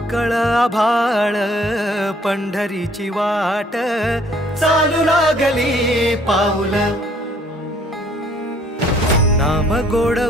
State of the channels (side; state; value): both; normal; correlation 0.61